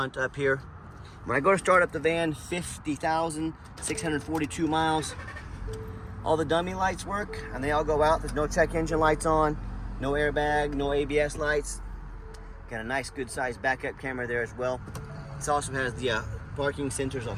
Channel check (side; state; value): both; identical; correlation 1.00